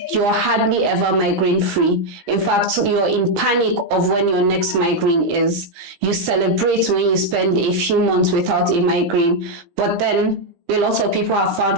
ever migraine free. In fact, you're in panic of when your next migraine is. You celebrate when you spend a few months without a migraine, but then a lot of people have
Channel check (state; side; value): late; left; 17 ms